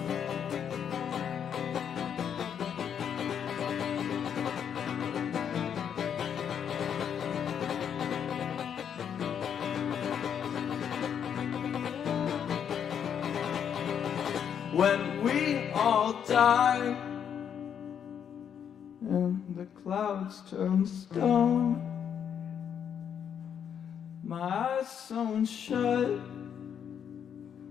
When we all die and the clouds turn stone, my eyes sewn shut,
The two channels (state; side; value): quieter; right; 8.3 dB